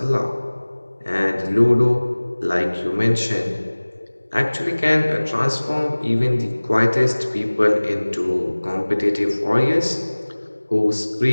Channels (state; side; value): inverted; both; correlation -1.00